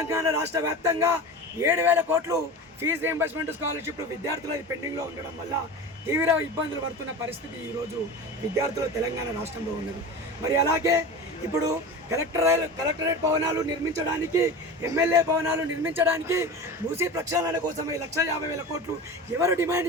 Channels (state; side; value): normal; both; correlation 0.30